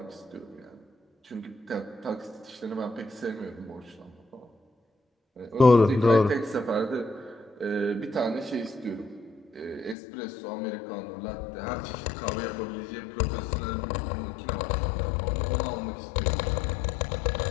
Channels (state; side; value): drops out; right; at 10.0 s